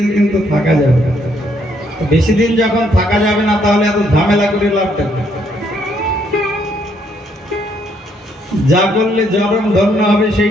কিন্তু থাকা যাবে না। বেশি দিন যখন থাকা যাবে না, তাহলে এত ঝামেলা করে লাভ দেবে। যা করলে জরম ধন্য হবে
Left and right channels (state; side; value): normal; both; correlation 0.71